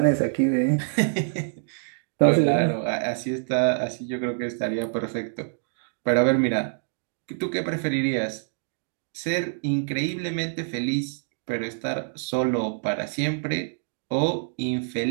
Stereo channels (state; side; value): silent; left; digital silence